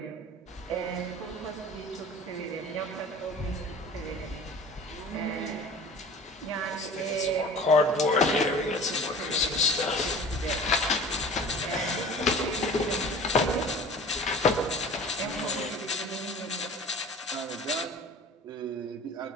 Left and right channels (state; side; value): normal; both; correlation 0.42